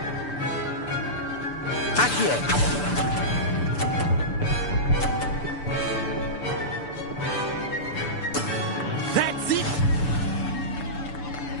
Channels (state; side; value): late; right; 6.9 ms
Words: Accio! That's it!